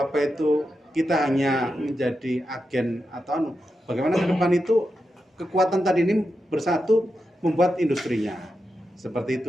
kita hanya menjadi agen atau bagaimana ke depan itu kekuatan tadi ini bersatu membuat industrinya. Seperti itu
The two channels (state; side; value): normal; both; correlation 0.88